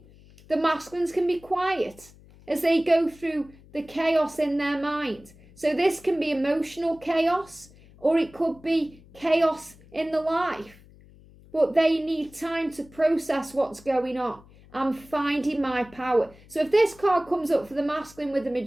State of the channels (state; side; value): noise; left; hum, 24 dB below the sound